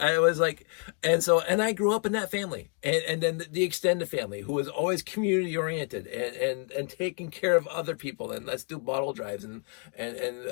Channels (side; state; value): right; quieter; 39.9 dB